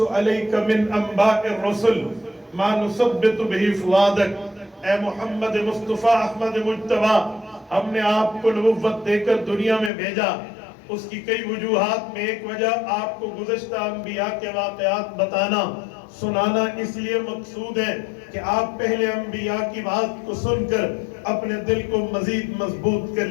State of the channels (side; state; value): right; drops out; at 9.9 s